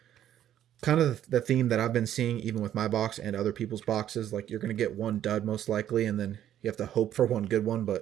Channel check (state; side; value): quieter; left; 11.2 dB